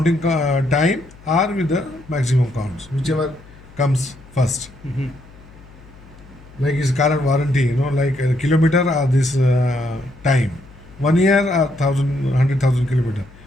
time or with the maximum counts, whichever comes first. Like his current warranty, like a kilometer or this time, 1 year or 100,000 kilometer,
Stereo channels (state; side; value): noise; left; hum, 23 dB below the sound